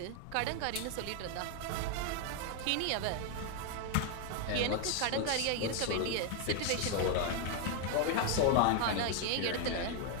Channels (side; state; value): both; different; correlation 0.01